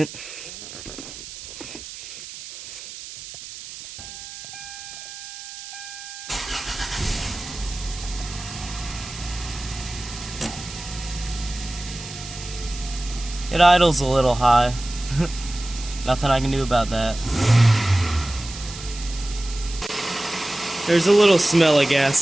It idles a little high. Nothing I can do about that. There's a little smell of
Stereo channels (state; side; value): noise; right; hiss, 13 dB below the sound